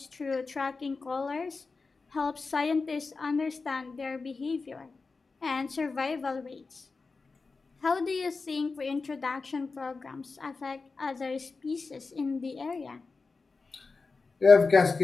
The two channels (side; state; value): right; quieter; 4.2 dB